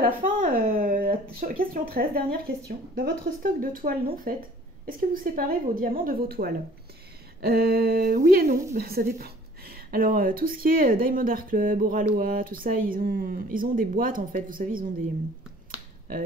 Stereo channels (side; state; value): both; normal; correlation 0.53